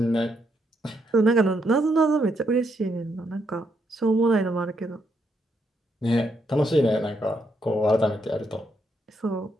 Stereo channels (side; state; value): both; normal; correlation 0.77